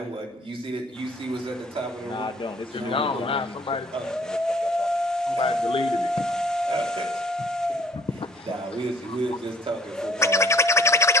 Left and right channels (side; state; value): both; normal; correlation 0.55